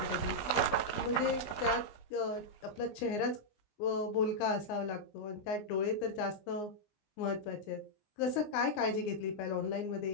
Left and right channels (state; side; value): late; right; 19 ms